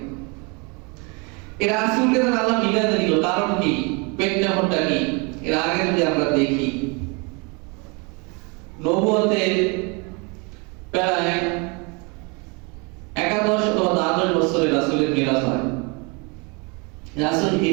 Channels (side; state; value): left; quieter; 30.7 dB